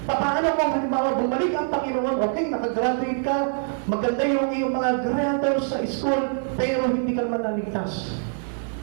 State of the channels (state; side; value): silent; left; 57 dB below the other